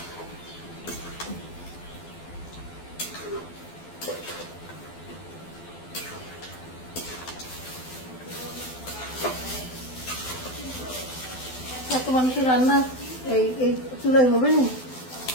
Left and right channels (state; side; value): late; right; 12 ms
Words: এত মানুষের রান্না এই এই চুলাই হবে না